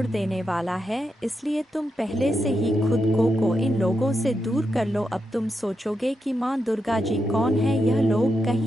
देने वाला है, इसलिए तुम पहले से ही खुद को इन लोगों से दूर कर लो। अब तुम सोचोगे कि माँ दुर्गा जी कौन है, यह लोग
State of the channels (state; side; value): normal; both; correlation 0.85